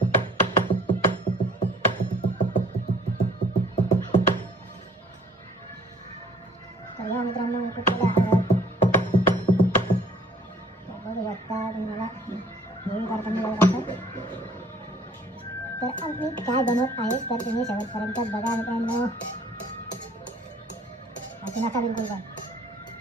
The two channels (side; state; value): both; normal; correlation 0.56